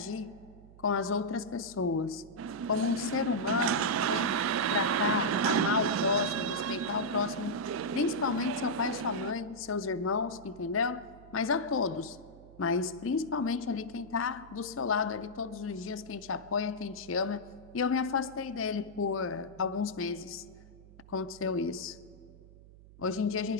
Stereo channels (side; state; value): right; noise; hum, 21 dB below the sound